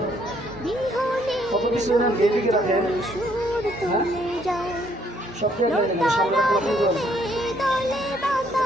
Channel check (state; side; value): normal; both; correlation 0.67